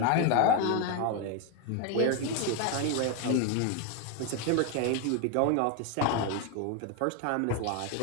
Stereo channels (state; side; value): different; both; correlation 0.01